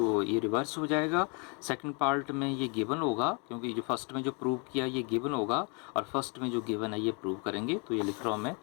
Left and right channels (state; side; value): quieter; right; 33.8 dB